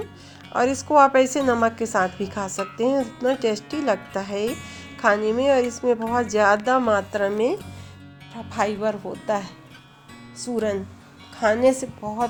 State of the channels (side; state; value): both; identical; correlation 1.00